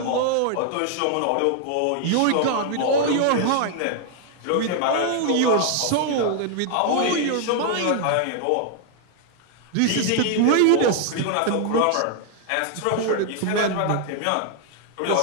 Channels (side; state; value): both; different; correlation 0.00